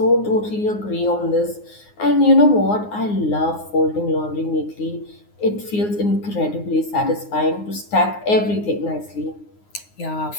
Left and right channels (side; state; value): right; late; 9.6 ms